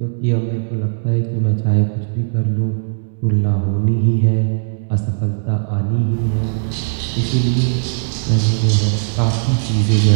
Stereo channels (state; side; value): silent; left; digital silence